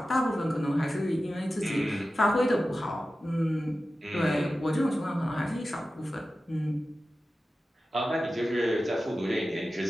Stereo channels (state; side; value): normal; both; correlation 0.94